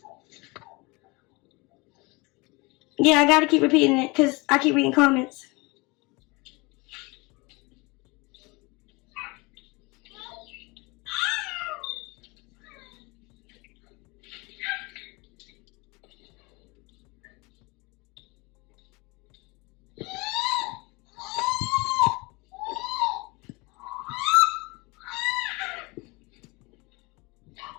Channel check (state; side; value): quieter; right; 25.7 dB